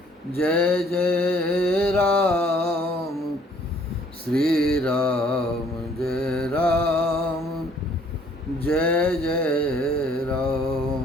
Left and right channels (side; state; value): both; normal; correlation 0.60